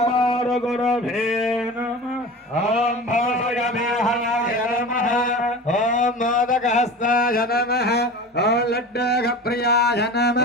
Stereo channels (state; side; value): normal; both; correlation 0.34